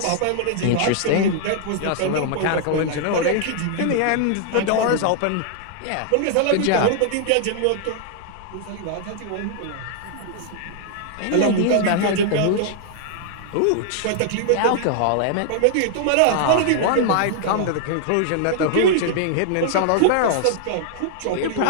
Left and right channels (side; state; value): both; different; correlation -0.01